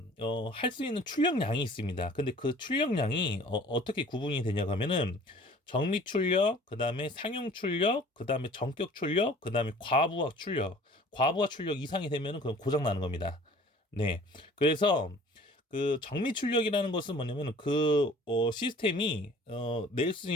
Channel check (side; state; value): both; normal; correlation 0.50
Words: 할 수 있는 출력량이 있습니다. 근데 그 출력량이 어떻게 구분이 되냐고 하면은 정미 출력, 그 다음에 상용 출력, 그 다음에 전격 출력, 그 다음에 과부하 출력. 과부하 출력 이상이 되면은 그건 고장 나는 겁니다. 네. 그래서 그 정미 출력이라는 것은 뭐냐면 그 시스템이 낼 수